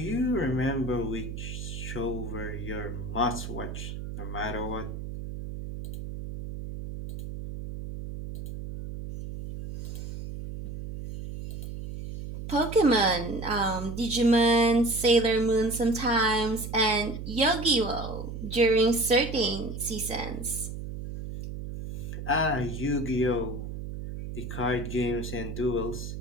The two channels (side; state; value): right; noise; hum, 8 dB below the sound